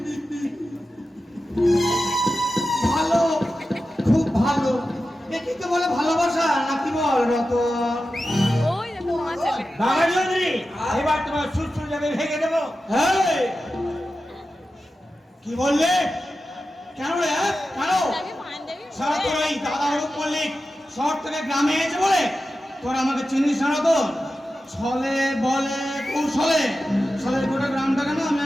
ভালো, খুব ভালো। একে তো বলে ভালোবাসা নাকি বল রতন? ওই দেখো মা চলে বাবা চৌধুরী, এবার তোমার সুরসুর যাবে ভেঙে দেবো। কি বললে? কেন রে? কেন? আমি পাঞ্জাবি সারা তোর এই দাদা হরুপ মল্লিক শহর থেকে গ্রামে এসে বলে তোর আমাকে চিনিস না তো? ছলে বলে কৌশলে ছলের গোটা গ্রামটাকে না আমি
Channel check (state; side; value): normal; both; correlation 0.92